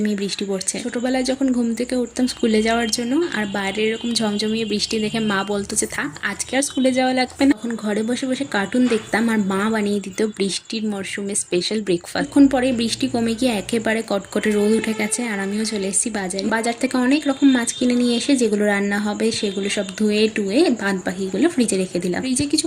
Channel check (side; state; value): both; identical; correlation 1.00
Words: বৃষ্টি পড়ছে। ছোটবেলায় যখন ঘুম থেকে উঠতাম স্কুলে যাওয়ার জন্য, আর বাইরে এরকম ঝমঝমিয়ে বৃষ্টি দেখে মা বলতো যে থাক আজকে আর স্কুলে যাওয়া লাগবে না। তখন ঘরে বসে বসে কার্টুন দেখতাম আর মা বানিয়ে দিত বৃষ্টির মরশুমে স্পেশাল ব্রেকফাস্ট। এখন পরে বৃষ্টি কমে গিয়ে একেবারে কটকটে রোদ উঠে গেছে আর আমিও চলে এসেছি বাজারে। বাজার থেকে অনেক রকম মাছ কিনে নিয়ে এসে যেগুলো রান্না হবে সেগুলো সব ধুয়ে টুয়ে বাদ বাকিগুলো ফ্রিজে রেখে দিলাম। ফ্রিজে কিছু